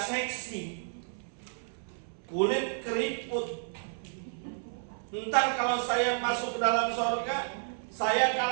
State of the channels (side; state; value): left; silent; 57 dB below the other